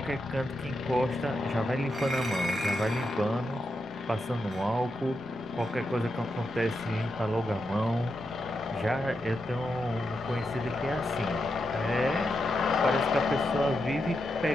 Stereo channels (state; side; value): normal; both; correlation 0.86